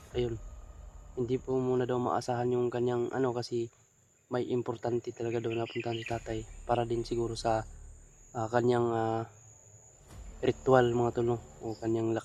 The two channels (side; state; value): both; identical; correlation 1.00